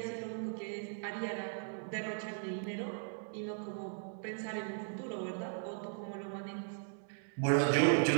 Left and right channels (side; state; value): left; silent; digital silence